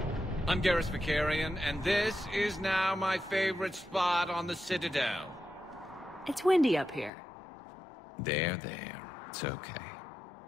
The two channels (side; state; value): right; drops out; at 7.1 s